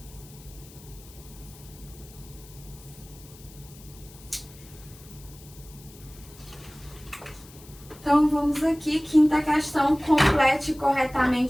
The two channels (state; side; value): noise; left; hiss, 21 dB below the sound